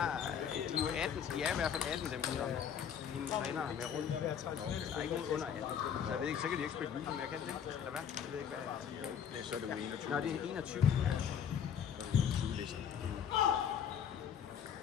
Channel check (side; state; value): right; quieter; 8.2 dB